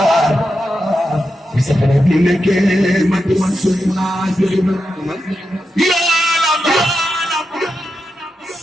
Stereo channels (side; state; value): both; normal; correlation 0.88